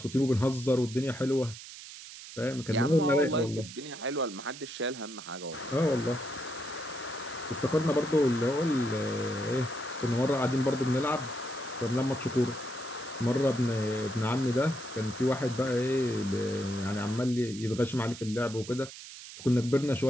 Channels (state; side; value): noise; right; hiss, 14 dB below the sound